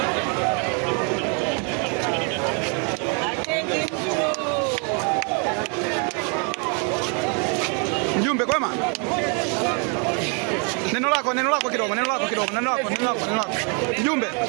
Mjumbe kwema? Neno lako kidogo.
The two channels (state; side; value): quieter; left; 37.0 dB